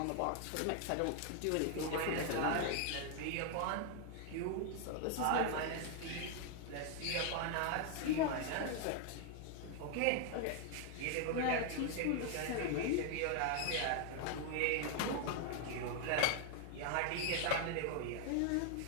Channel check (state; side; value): different; both; correlation 0.00